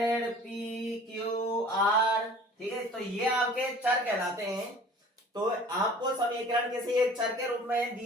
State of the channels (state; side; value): normal; both; correlation 0.47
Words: p q r, ठीक है, तो ये आपके चर कहलाते हैं। तो आपको समीकरण किसी एक चर के रूप में